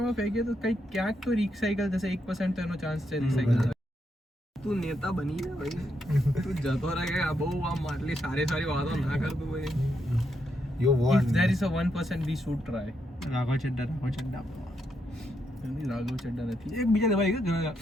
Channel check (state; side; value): normal; both; correlation 0.80